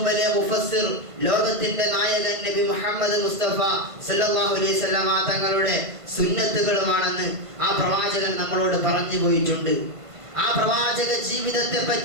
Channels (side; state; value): left; late; 1.5 ms